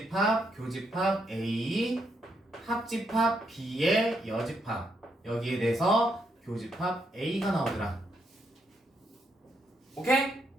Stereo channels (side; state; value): both; normal; correlation 0.77